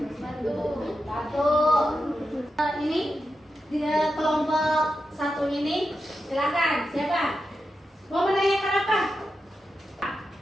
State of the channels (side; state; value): both; normal; correlation 0.89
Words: Batu. Ini di kelompok satu ini, silakan. Siapa? Mau menanyakan apa?